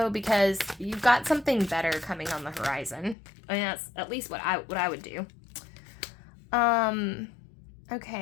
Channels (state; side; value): drops out; right; at 3.2 s